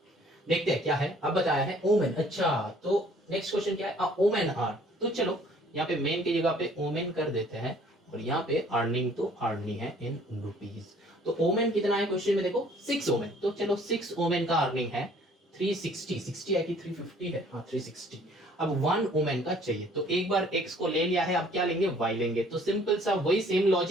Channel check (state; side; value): normal; both; correlation 0.57